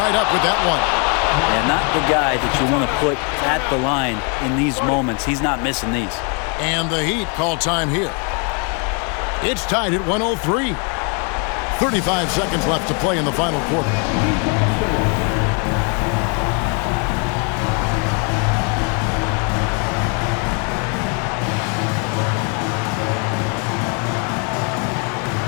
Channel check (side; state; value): right; quieter; 35.9 dB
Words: up with that one. And not the guy that you want to put at the line in these moments. He's not missing these. And the Heat call time here. It's tied at 103. 35 seconds left to play in the final quarter.